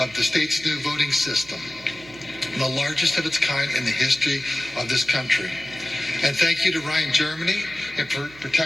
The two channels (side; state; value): right; noise; hum, 22 dB below the sound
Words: the state's new voting system, the largest of its kind in the history of this country. And thank you to Ryan Germany for